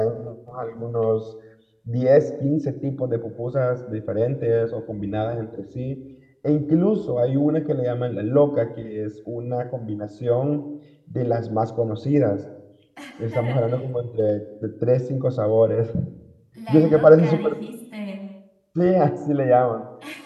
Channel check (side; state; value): both; identical; correlation 1.00